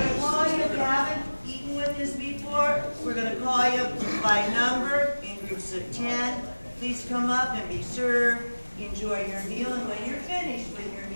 to call you, if you haven't eaten with us before, we're going to call you by number in groups of 10. Please come up and be served. Enjoy your meal, and when you're finished with your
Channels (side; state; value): both; inverted; correlation -1.00